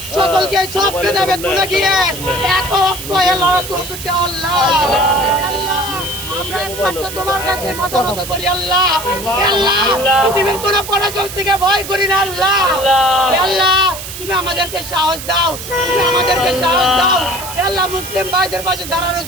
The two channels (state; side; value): noise; right; hiss, 10 dB below the sound